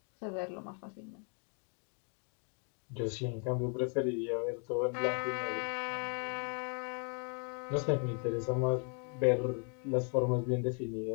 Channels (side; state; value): right; quieter; 40.0 dB